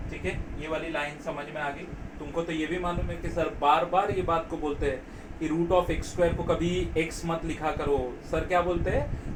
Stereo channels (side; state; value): both; identical; correlation 1.00